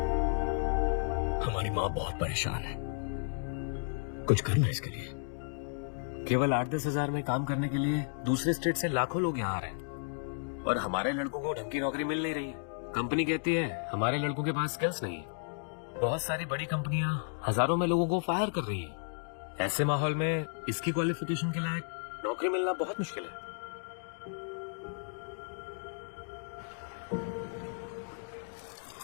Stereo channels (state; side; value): silent; right; digital silence